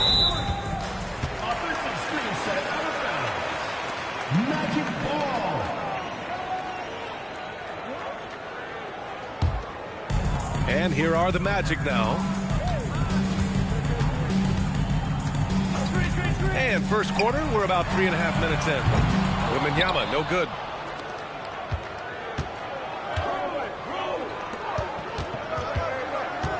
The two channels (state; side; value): identical; both; correlation 1.00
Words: Magic ball. And here are the Magic now. And first quarter, we're about 3.5 minutes in. Wembanyama, no good.